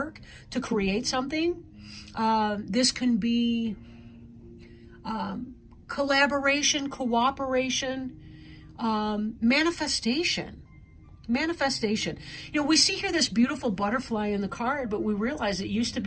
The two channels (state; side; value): identical; both; correlation 1.00